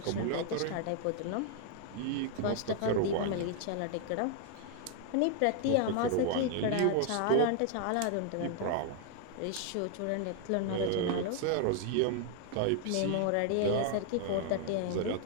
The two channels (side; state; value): both; different; correlation 0.00